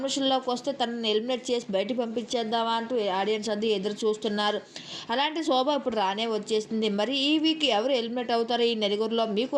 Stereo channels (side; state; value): both; identical; correlation 1.00